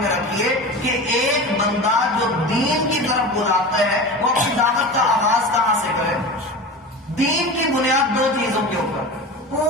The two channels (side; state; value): both; normal; correlation 0.30